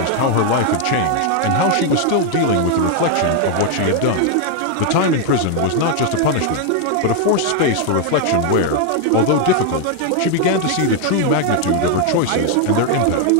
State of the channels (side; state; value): both; different; correlation 0.00